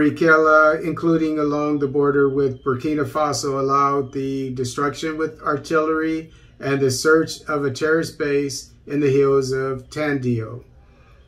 including along the border with Burkina Faso, allowed the destruction with artillery and the search of a terrorist base in the hills of Tandio.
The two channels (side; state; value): both; identical; correlation 1.00